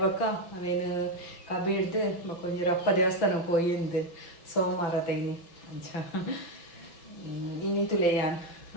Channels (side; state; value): right; late; 5.6 ms